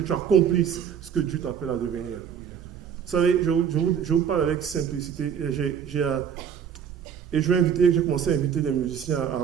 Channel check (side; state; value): left; quieter; 7.9 dB